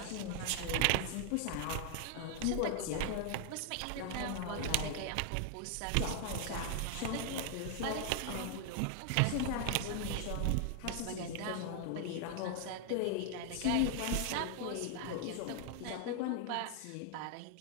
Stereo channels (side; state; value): both; different; correlation 0.00